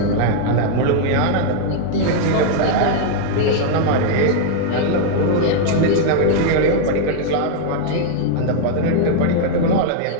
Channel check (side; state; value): both; different; correlation 0.00